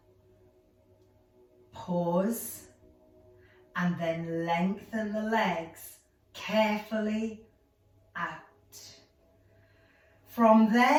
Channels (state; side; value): identical; both; correlation 1.00